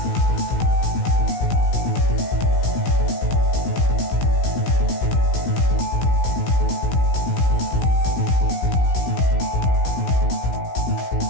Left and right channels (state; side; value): late; right; 16 ms